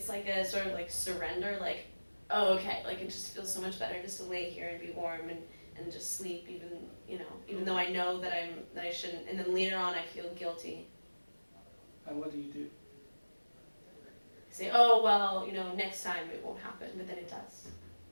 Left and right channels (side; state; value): both; inverted; correlation -1.00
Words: like a sort of like surrender, like, oh, okay, like it just feels so much better just to lay here and be warm and just sleep, even, you know, even though I know that I shouldn't, and then later on I feel guilty. And what do you do? Say, oh, well, you know, next time it won't happen, but then it does.